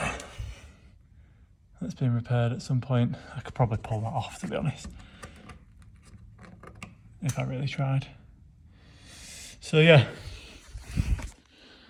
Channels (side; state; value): both; identical; correlation 1.00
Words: been repaired at some point. I could probably pull that off, to be honest, if I really tried. So yeah,